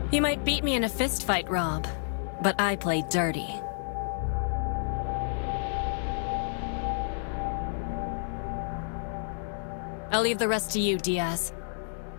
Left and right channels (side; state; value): right; silent; digital silence